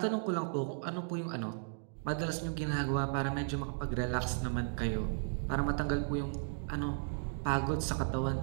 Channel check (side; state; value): left; silent; digital silence